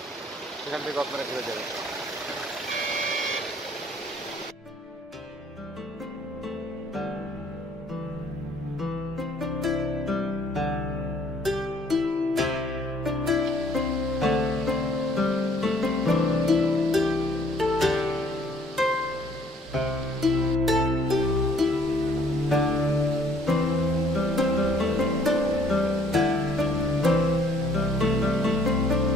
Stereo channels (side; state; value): both; normal; correlation 0.61